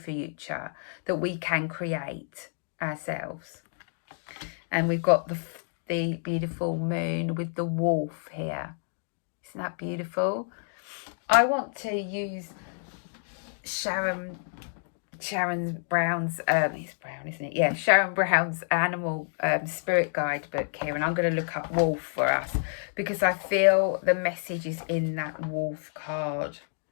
that we can create ourselves. And we've got the beautiful moon with the wolf here. Isn't that beautiful? I want to use Sharon Brown's, it's brown, isn't it? Yeah, Sharon Brown's animal spirit guide book here. And I'm going to look up wolf for us because I feel the message is in that wolf card.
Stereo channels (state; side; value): silent; right; digital silence